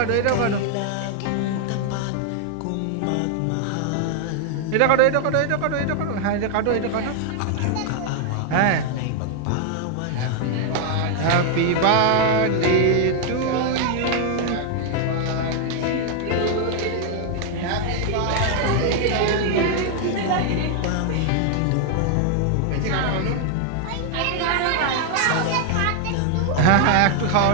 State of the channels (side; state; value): both; different; correlation 0.00